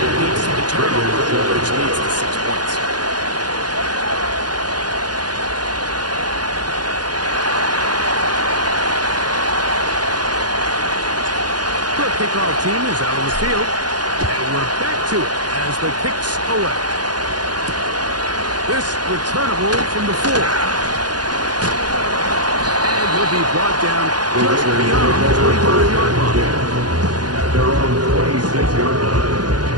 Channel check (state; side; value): late; left; 0.70 ms